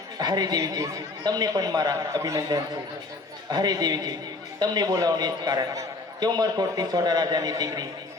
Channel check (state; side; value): quieter; right; 3.3 dB